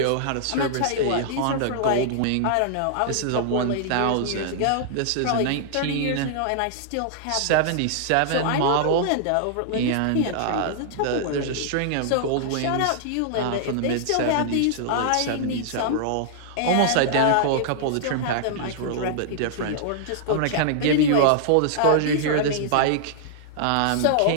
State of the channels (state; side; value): different; both; correlation -0.01